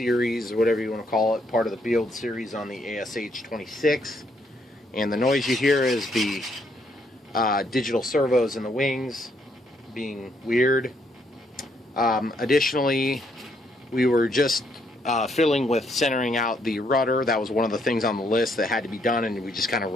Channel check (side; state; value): both; normal; correlation 0.72